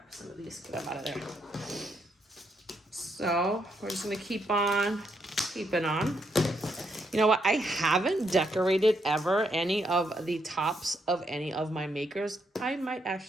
some of these, get them out of there. So we're just gonna keep on keeping on. You know what? I haven't decorated ever any of the tops of any of my makers. I might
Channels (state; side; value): normal; both; correlation 0.77